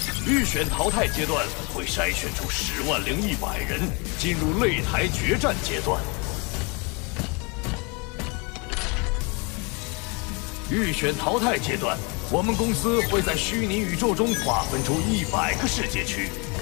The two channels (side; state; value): right; quieter; 31.0 dB